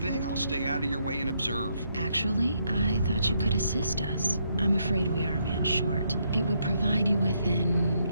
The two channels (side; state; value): both; inverted; correlation -0.75